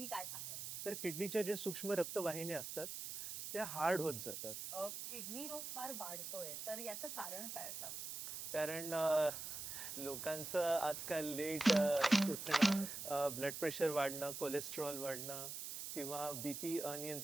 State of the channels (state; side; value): noise; right; hiss, 6 dB below the sound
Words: काय सांगाल? तर किडनीच्या जे सूक्ष्म रक्तवाहिन्या असतात त्या हार्ड होत जातात. किडनी रोग फार वाढतोय तर याचं कारण काय असावं? कारण लोकांचं आजकाल लेट उठणं, ब्लड प्रेशर वाढणं, कोलेस्ट्रॉल वाढणं किंवा बीपी